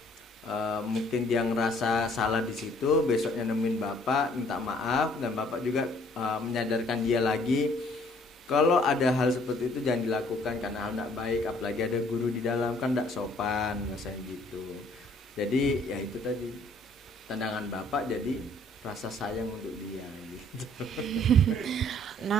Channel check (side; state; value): both; normal; correlation 0.60